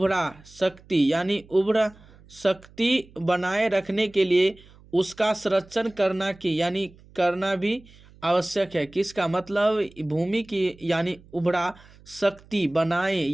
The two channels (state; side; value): noise; right; hum, 25 dB below the sound